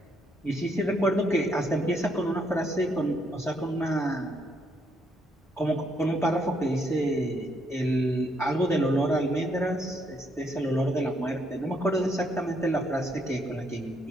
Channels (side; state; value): both; normal; correlation 0.73